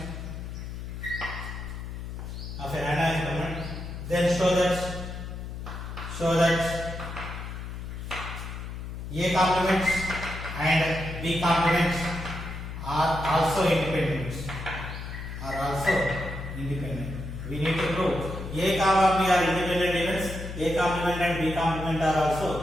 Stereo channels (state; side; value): noise; left; hum, 8 dB below the sound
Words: then show that A complement and B complement are also independent. We need to prove A comma B are independent events, A complement and B complement are also